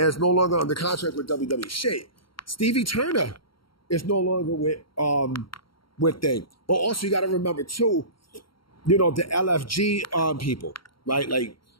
is no longer under contract with WWE. Shit. Stevie Turner is no longer with thing. But also you got to remember too, the LFG people, right? Like,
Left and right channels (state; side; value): late; right; 0.73 ms